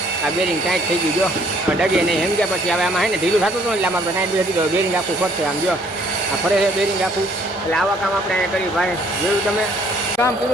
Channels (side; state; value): both; normal; correlation 0.62